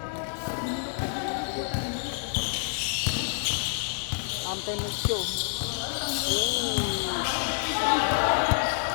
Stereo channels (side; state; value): right; silent; 59 dB below the other